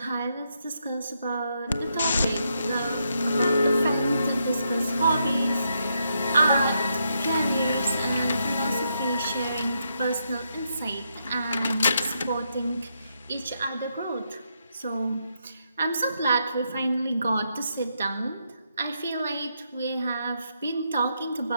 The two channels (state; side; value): inverted; both; correlation -0.80